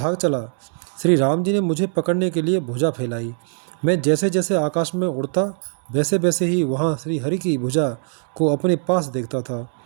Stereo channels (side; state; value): left; silent; 65 dB below the other